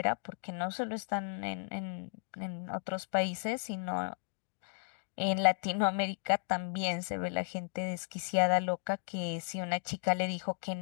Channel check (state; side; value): silent; right; digital silence